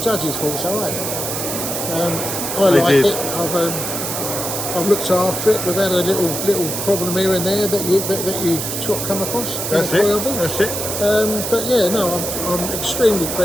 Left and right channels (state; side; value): noise; right; hiss, 4 dB below the sound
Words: thought so. I like it. I've looked after it. We've had a little problem here and there that you sort of come across. That's it. That's it. But yeah, no, I'm extremely